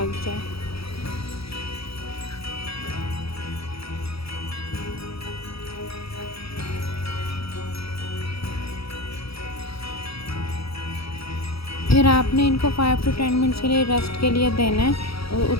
जाए। फिर आपने इनको 5 to 10 मिनट्स के लिए रेस्ट के लिए देना है।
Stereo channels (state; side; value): late; right; 0.76 ms